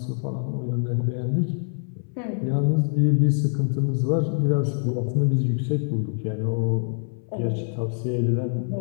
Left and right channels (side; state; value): right; silent; 62 dB below the other